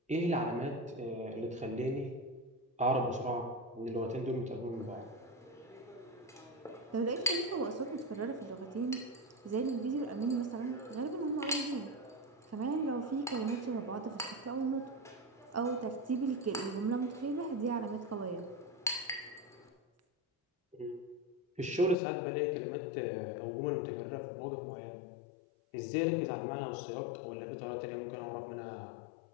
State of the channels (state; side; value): drops out; right; at 22.0 s